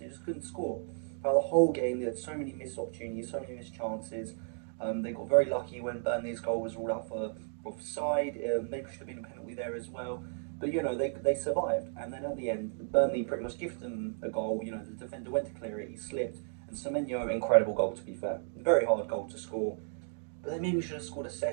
just couldn't score. Throughout the whole game, they had so many missed opportunities, so many missed chances. They got very lucky when Burnley's goal was ruled out for offside. Maybe should have been a penalty there as well. But, they survived. And then at the end, Burnley pretty much gifted them a goal. The defender went to clear it, he slipped. And Semenyo, incredible goal, to be fair. Very hard goal to score. But they maybe should have scored a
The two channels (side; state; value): left; silent; 55 dB below the other